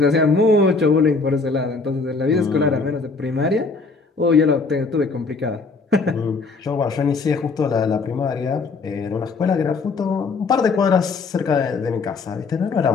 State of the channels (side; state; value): right; quieter; 4.2 dB